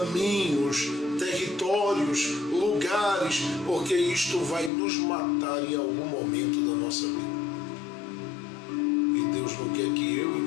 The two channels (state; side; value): drops out; right; at 4.7 s